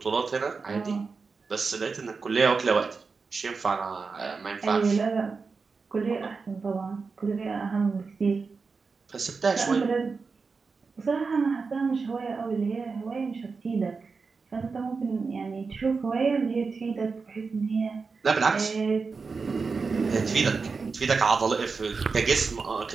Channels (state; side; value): quieter; left; 4.7 dB